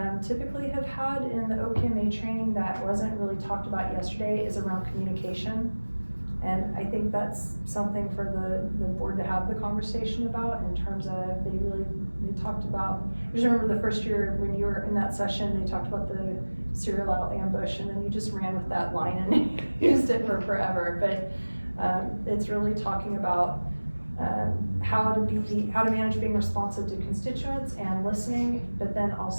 typically have had in the OPMA training that wasn't really talked about yesterday is around communication. And I think that's something for the board to have the conversation about, in terms of they talked about, I just remember the first year when you were in that session, they talked about the serial ambush, and then you just ran with that line and used it for forever. But it's really talking about how to manage being responsive to constituents and listening, but then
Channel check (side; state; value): both; inverted; correlation -1.00